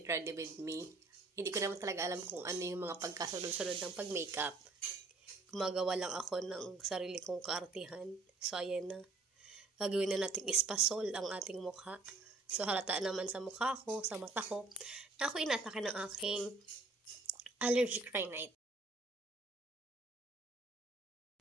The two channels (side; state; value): left; quieter; 3.5 dB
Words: ready with me. Hindi ko naman talaga alam kung ano yung mga pagkasunod-sunod ng pag-makeup. Gumagawa lang ako ng sarili kong kaartihan. So, ayan na. Gagawin na natin ispasol ang ating mukha. So, halata naman sa mukha ko, sa mata ko, na ako inatake ng aking allergic rhinite.